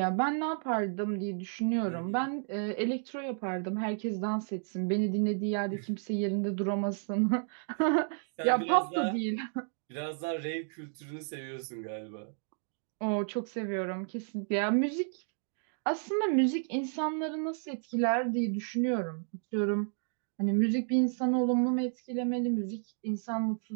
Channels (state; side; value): silent; left; digital silence